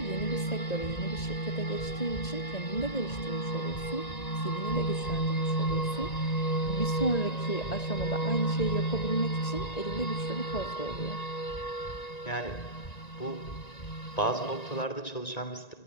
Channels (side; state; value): right; late; 1.9 ms